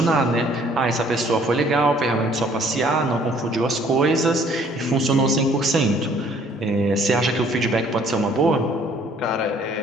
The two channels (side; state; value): both; normal; correlation 0.59